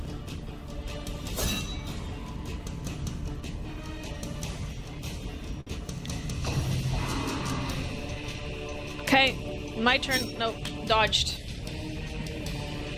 Okay, my turn. Nope, dodged.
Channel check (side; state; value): both; identical; correlation 1.00